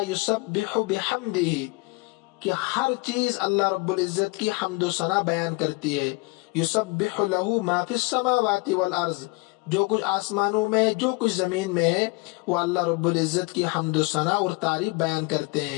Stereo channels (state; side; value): quieter; right; 26.7 dB